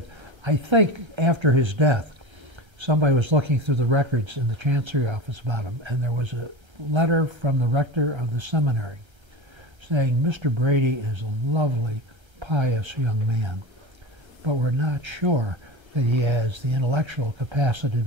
I think after his death, somebody was looking through the records in the Chancery office about him, and there was a letter from the rector of the seminary saying, "Mr. Brady is a lovely, pious young man, but we're not sure that he has the intellectual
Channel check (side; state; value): left; late; 1.3 ms